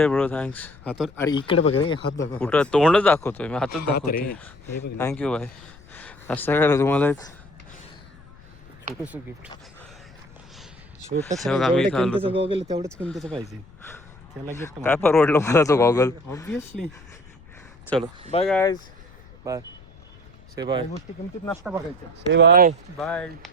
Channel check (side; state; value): left; noise; rumble, 23 dB below the sound